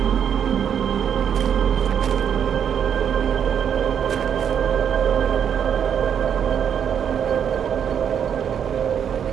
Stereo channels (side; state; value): left; quieter; 8.3 dB